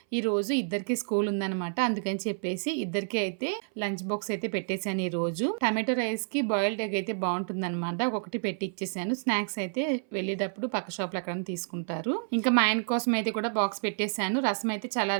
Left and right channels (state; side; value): silent; left; 57 dB below the other